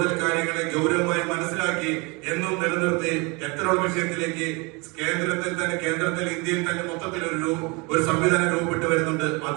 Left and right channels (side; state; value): left; quieter; 28.2 dB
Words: കാര്യങ്ങളെ ഗൗരവമായി മനസ്സിലാക്കി എന്നും നിലനിർത്തി എത്തനോൾ വിഷയത്തിലേക്ക് കേന്ദ്രത്തിൽ ഇന്ത്യയിൽ തന്നെ മൊത്തത്തിൽ ഒരു സംവിധാനം രൂപപ്പെട്ടു വരുന്നുണ്ട്.